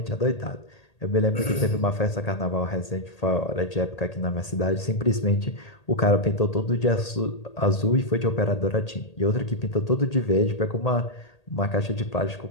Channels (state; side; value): late; right; 1.8 ms